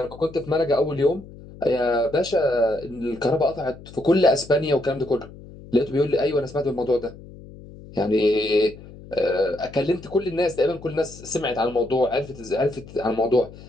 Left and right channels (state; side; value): noise; left; hum, 18 dB below the sound